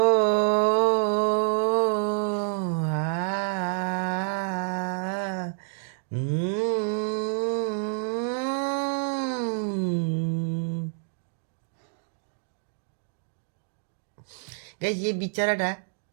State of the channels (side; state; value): left; silent; digital silence